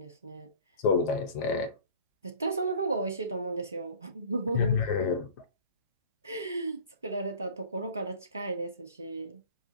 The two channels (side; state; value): both; inverted; correlation -0.43